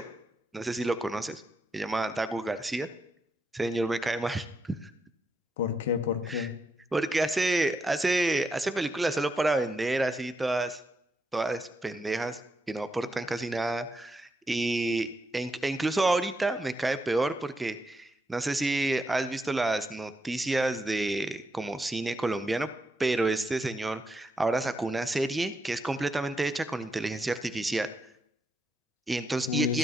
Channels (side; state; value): both; normal; correlation 0.82